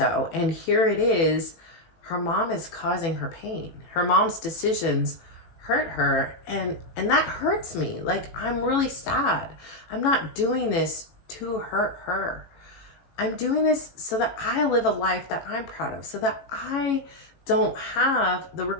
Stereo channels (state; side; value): late; right; 18 ms